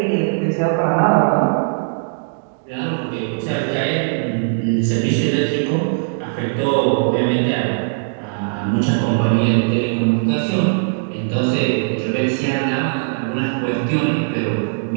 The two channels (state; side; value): silent; left; digital silence